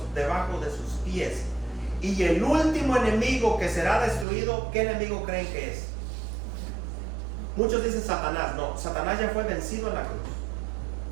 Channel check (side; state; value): left; drops out; at 4.2 s